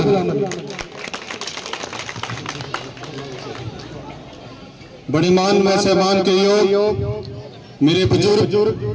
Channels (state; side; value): identical; both; correlation 1.00